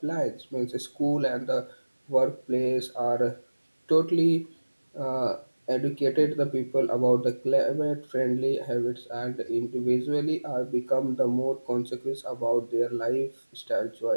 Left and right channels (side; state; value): both; inverted; correlation -1.00